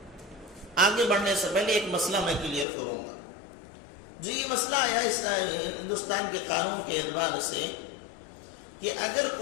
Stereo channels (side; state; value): right; drops out; at 2.7 s